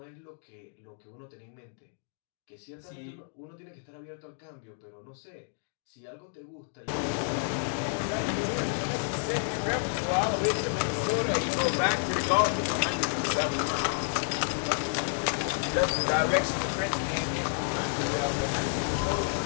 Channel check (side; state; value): right; silent; digital silence